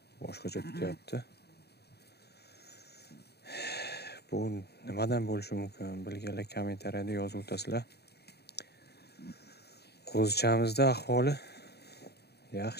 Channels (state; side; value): late; right; 0.48 ms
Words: boshqacha tutyapti. Bu nimadan bo'lishi mumkin? Bilganlar kommentariyada yozib o'tasizlar. Qo'zichamizda ahvoli